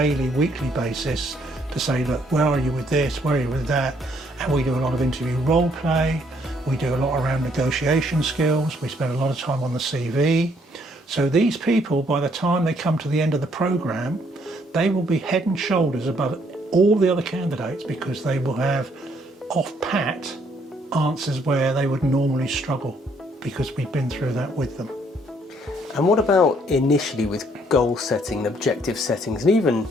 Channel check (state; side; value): normal; both; correlation 0.67